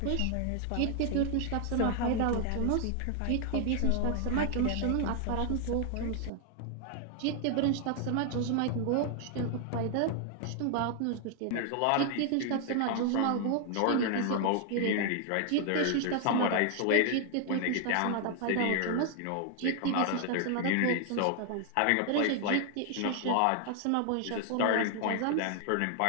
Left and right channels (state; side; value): different; both; correlation 0.00